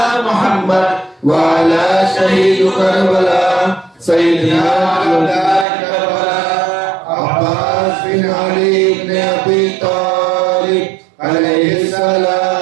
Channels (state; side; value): drops out; left; at 5.7 s